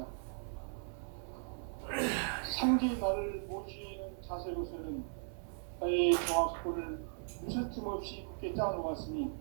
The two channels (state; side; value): silent; left; 53 dB below the other